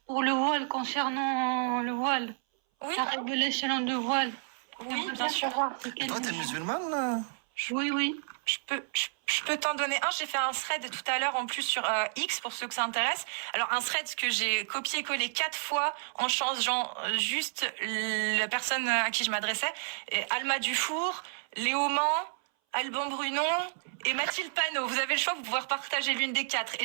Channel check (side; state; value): left; silent; 57 dB below the other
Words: pour le voile, concernant le voile. Oui, La révélation de voile. oui, J'aimerais bien sûr. savoir c'est Et quel toi, t'es numéro. musulmane là? Oui, oui. Je peux t'en donner un. J'ai fait un thread tout à l'heure en plus sur X pour ceux que ça intéresse. Alors un thread que j'ai copié-collé 4 fois en changeant juste la personne à qui je m'adressais. Et Alma Dufour, Léo Mans, Alban Brunon et Mathilde Panot. Vous avez le choix, vous pouvez partager l'une des 4.